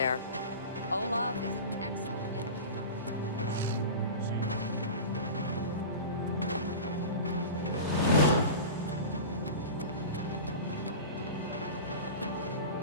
Olav is an excellent innkeeper.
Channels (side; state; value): both; inverted; correlation -0.31